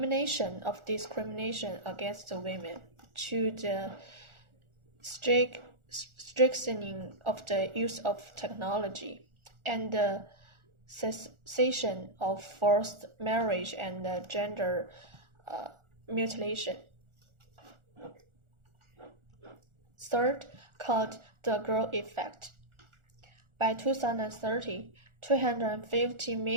of discrimination against women to the strengthening of the use of technology and the cessation of forced marriage and gender mutilation. Third, called the Girl Effect. By 2030, 250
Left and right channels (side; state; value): left; late; 1.4 ms